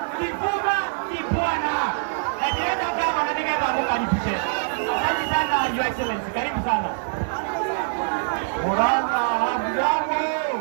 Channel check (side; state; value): left; silent; 63 dB below the other